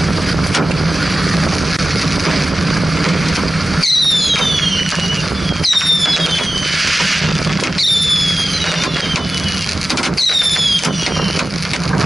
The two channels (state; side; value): normal; both; correlation 0.95